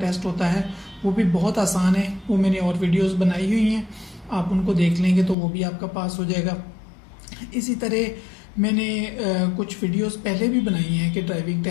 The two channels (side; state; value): right; drops out; at 5.4 s